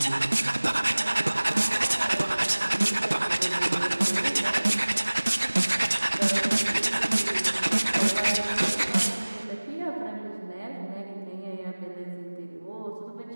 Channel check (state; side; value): inverted; both; correlation -1.00